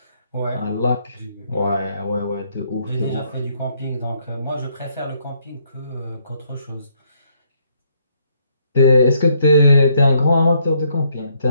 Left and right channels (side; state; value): both; inverted; correlation -0.71